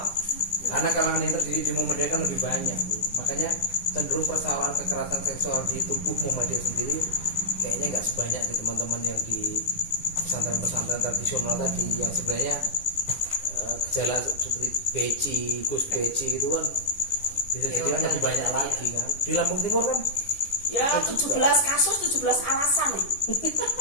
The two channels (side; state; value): right; late; 10 ms